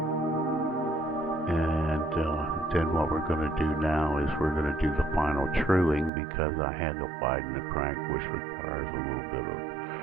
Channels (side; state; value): left; drops out; at 6.1 s